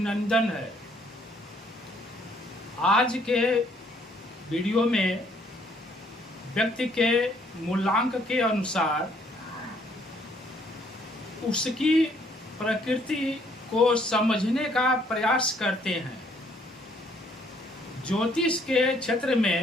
है। आज के वीडियो में व्यक्ति के मूलांक के अनुसार उसकी प्रकृति को समझने का प्रयास करते हैं। ज्योतिष के क्षेत्र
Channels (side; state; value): both; normal; correlation 0.65